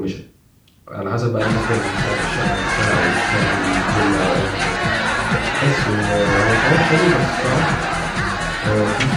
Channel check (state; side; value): identical; both; correlation 1.00